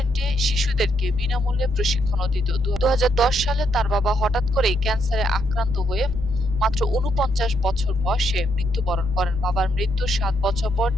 শিশুদেরকে বিনামূল্যে প্রশিক্ষণও দিত। ২০১০ সালে তার বাবা হঠাৎ করেই ক্যান্সারে আক্রান্ত হয়ে মাত্র ৪৯ বছর বয়সে মৃত্যুবরণ করেন। বাবার মৃত্যুর ৭ বছর পর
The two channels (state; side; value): noise; right; rumble, 10 dB below the sound